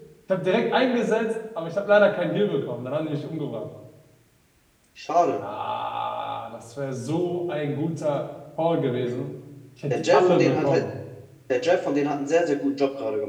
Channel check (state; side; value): identical; both; correlation 1.00